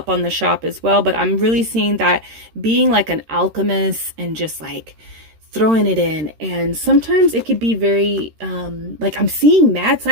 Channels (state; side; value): late; left; 13 ms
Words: on the shop as well, but I'm really seeing that being like an alchemist and just like throwing it in. And sometimes it could be very, like I'm seeing mad